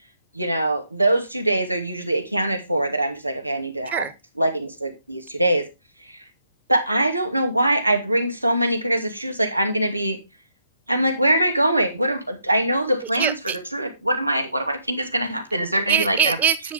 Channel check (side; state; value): both; inverted; correlation -0.74